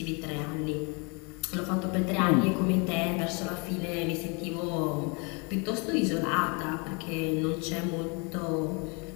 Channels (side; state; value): right; quieter; 32.0 dB